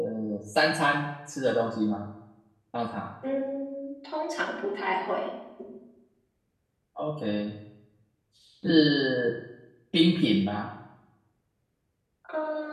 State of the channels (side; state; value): both; identical; correlation 1.00